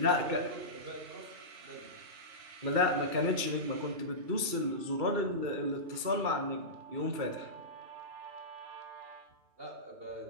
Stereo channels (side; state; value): left; late; 2.3 ms